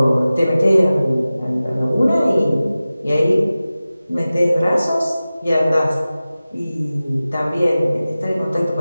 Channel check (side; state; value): both; inverted; correlation -0.96